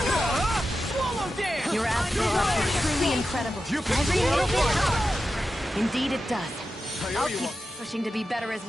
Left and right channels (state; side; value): normal; both; correlation 0.91